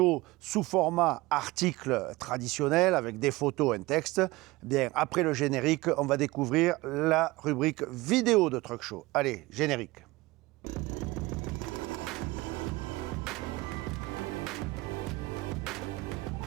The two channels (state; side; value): quieter; left; 20.6 dB